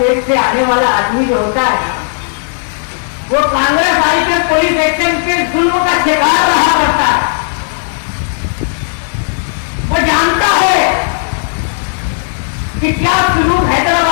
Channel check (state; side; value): silent; right; digital silence